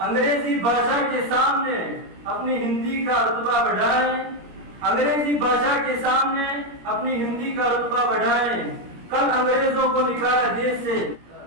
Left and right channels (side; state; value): left; late; 17 ms